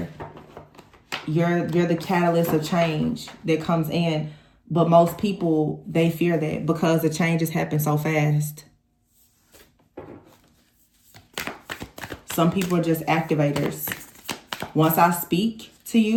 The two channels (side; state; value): both; identical; correlation 1.00